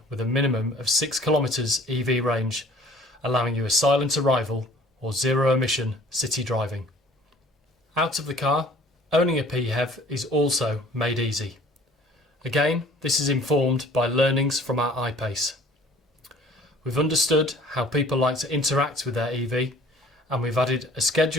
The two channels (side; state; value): both; normal; correlation 0.52